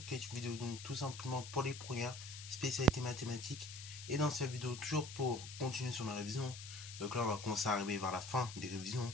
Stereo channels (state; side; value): noise; left; hiss, 11 dB below the sound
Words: qui est une vidéo donc tout simplement pour les premières spécialités mathématiques. Et dans cette vidéo, toujours pour continuer sur la révision. Donc là, on va commencer à arriver vers la fin des révisions.